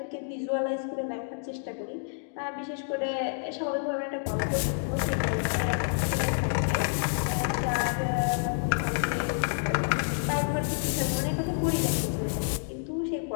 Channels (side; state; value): right; silent; digital silence